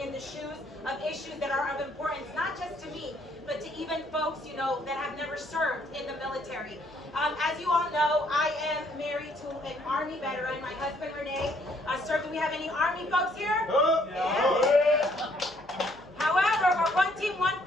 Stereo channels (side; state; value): left; noise; hum, 26 dB below the sound